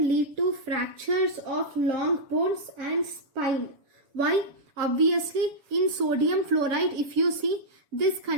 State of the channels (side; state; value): left; late; 7.1 ms